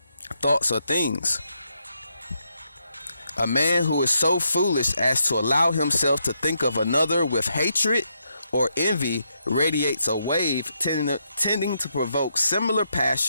Thoughts are things. A man who is so foolish as to allow himself to think of another with hatred or envy radiates a wave tending to provoke similar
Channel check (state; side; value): inverted; both; correlation -0.80